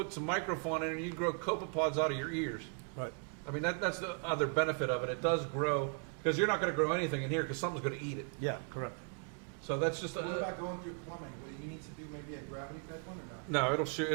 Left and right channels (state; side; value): quieter; left; 38.1 dB